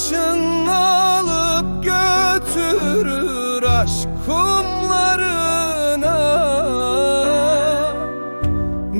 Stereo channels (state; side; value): inverted; both; correlation -1.00